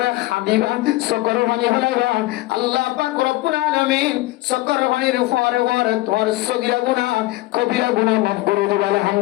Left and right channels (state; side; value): quieter; right; 18.8 dB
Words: হাদিবা সকর বানি ফেলাইবা আল্লাহ পাক রব্বুল আলামিন সকর বানির পরে পরে তোর সগীরা গুনাহ কবিরা গুনাহ মাফ করে দিবে